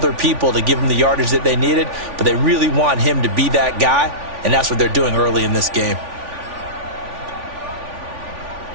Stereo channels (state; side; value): late; left; 3.5 ms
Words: people to give them the yardage that they needed, but they really want him to be that guy, and that's what they're doing early in this game.